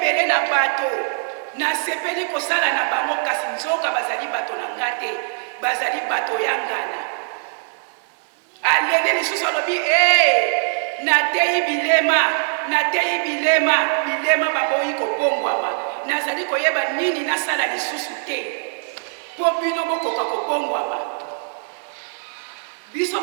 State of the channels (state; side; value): silent; left; 63 dB below the other